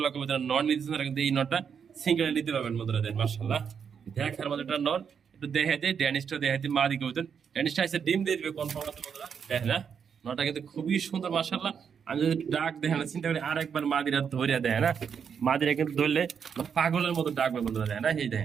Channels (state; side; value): quieter; left; 7.0 dB